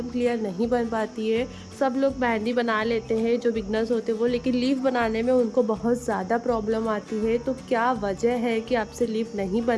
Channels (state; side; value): identical; both; correlation 1.00